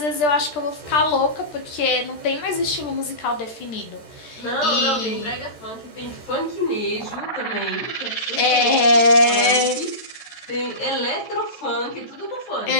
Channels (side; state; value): right; late; 13 ms